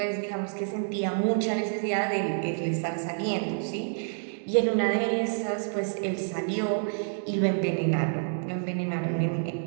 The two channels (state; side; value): silent; left; digital silence